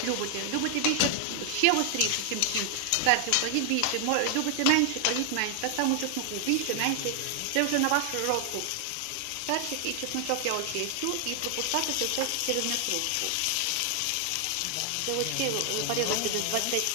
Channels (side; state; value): both; different; correlation 0.00